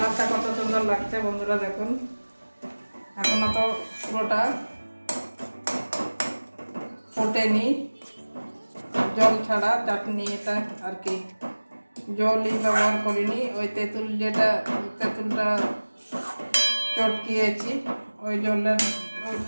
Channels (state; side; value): inverted; both; correlation -1.00